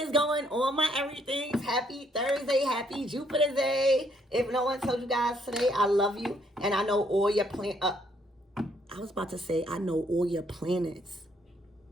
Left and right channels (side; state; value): both; normal; correlation 0.70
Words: going on, my everythings? Happy Thursday, happy Jupiter Day. If no one told you guys today, I love you. And I know all your I was about to say, I know all your planets.